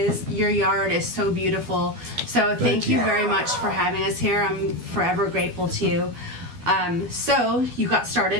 Your yard is so beautiful. So thank you very much for having us here. I'm forever grateful to you. So you got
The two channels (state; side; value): late; left; 12 ms